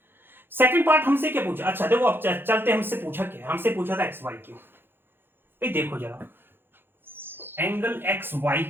सेकंड पार्ट हमसे क्या पूछा, अच्छा देखो अब चलते, हमसे पूछा क्या, हमसे पूछा था XYQ। भाई देखो जरा, एंगल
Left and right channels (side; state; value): left; late; 0.10 ms